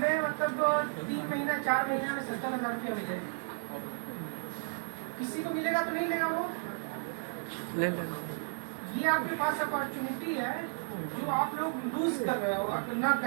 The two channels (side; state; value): left; silent; 56 dB below the other